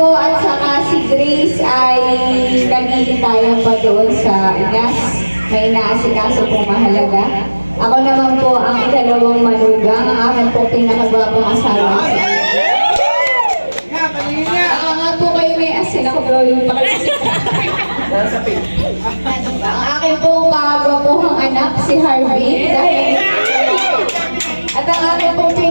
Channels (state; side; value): inverted; both; correlation -1.00